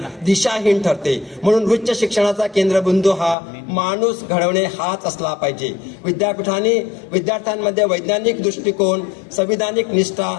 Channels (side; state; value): right; drops out; at 3.4 s